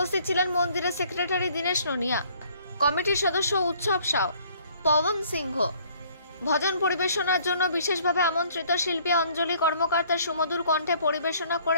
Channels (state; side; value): inverted; both; correlation -0.59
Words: ছিলেন মন্দিরের সেক্রেটারি দীনেশ নোনিয়া, কমিটির সদস্য উৎসব সাউ, পবন সিংহ। ভজন পরিবেশনার জন্য বিশেষভাবে আমন্ত্রিত শিল্পী অঞ্জলি কর্মকার তার সুমধুর কণ্ঠে পরিবেশনা